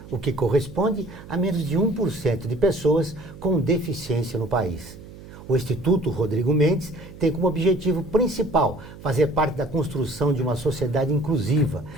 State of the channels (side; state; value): right; noise; hum, 17 dB below the sound